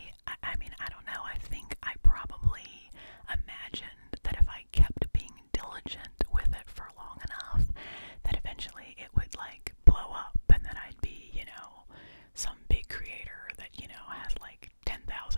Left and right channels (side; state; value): both; inverted; correlation -1.00